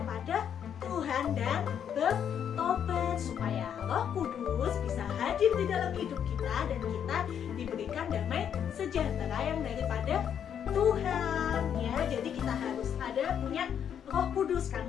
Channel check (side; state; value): right; quieter; 8.6 dB